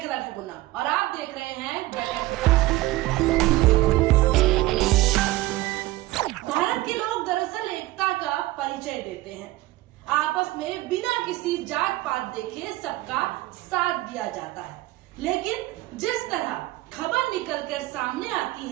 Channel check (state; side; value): quieter; left; 17.9 dB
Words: ठकुना और आप देख रहे हैं भारत के लोग दरअसल एकता का परिचय देते हैं। आपस में बिना किसी जात पात देखे सबका साथ दिया जाता है, लेकिन जिस तरह खबर निकलकर सामने आती